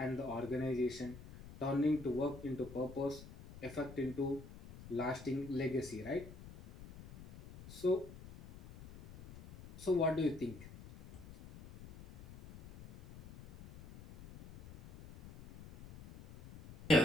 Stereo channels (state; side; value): noise; left; rumble, 16 dB below the sound